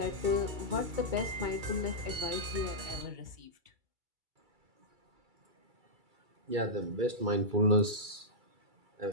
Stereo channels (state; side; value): late; left; 2.3 ms